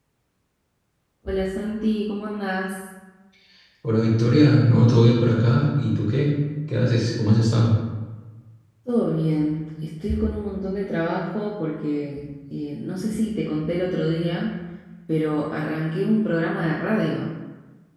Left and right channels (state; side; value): identical; both; correlation 1.00